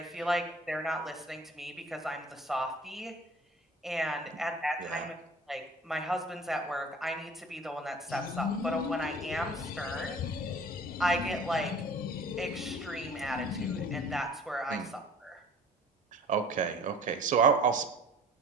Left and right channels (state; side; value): normal; both; correlation 0.47